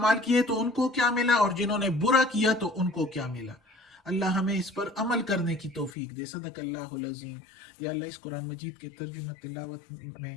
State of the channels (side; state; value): right; drops out; at 5.9 s